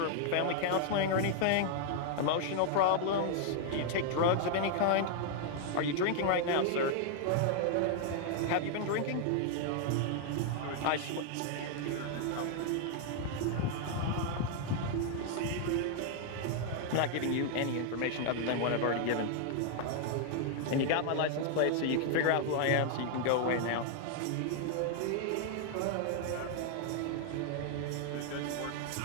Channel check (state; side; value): different; both; correlation 0.00